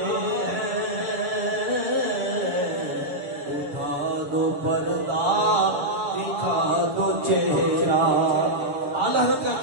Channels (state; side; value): late; left; 7.2 ms